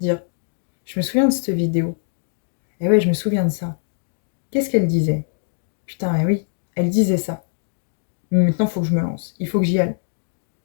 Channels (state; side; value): silent; right; digital silence